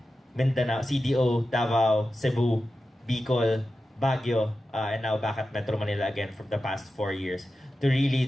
Mindanao, CDO, Davao, Cebu, Bicol, Baguio, and now back at Metro Manila again from the past 4 years to really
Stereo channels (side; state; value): both; normal; correlation 0.92